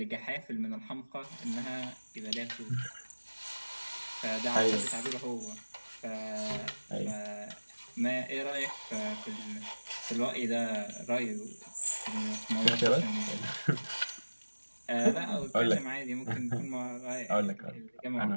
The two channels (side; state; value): both; inverted; correlation -1.00